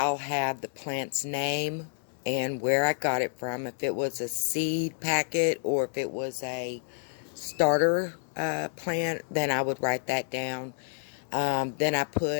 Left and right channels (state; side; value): silent; right; digital silence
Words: have the plant's name and where I got it from, if it was a seed packet or if it was a starter plant, then I would write that down. Then I